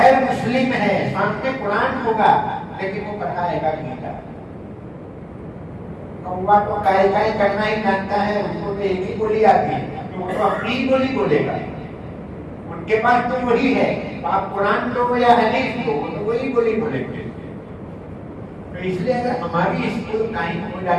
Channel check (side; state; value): both; identical; correlation 1.00